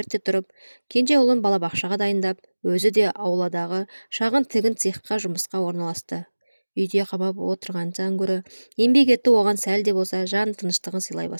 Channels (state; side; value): inverted; both; correlation -1.00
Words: тұрып, кенже ұлын балабақшаға дайындап, өзі де ауладағы шағын тігін цехқа жұмысқа орналасты. Үйде қамап отырғаннан гөрі еңбек ету оған сәл де болса жан тыныштығын сыйлай